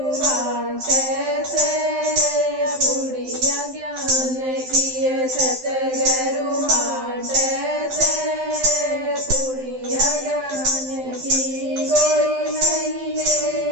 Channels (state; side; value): late; left; 12 ms